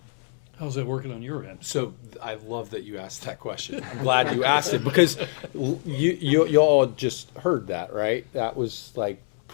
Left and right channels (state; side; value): silent; right; 61 dB below the other